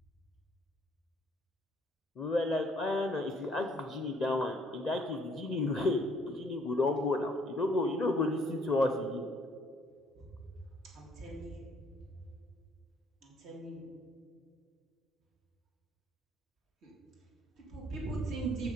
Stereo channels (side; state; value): both; normal; correlation 0.64